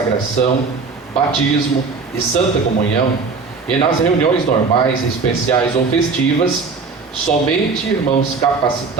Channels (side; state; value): left; quieter; 4.6 dB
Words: batismo e santa comunhão, e nas reuniões normais, especiais ou festivas, somente irmãos